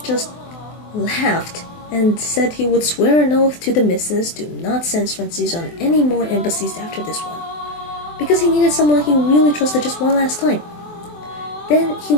just laughed and said he would swear an oath to the missus to not send Sphrantzes on any more embassies after this one, because he needed someone he really trusted just one last time. Then he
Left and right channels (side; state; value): right; late; 24 ms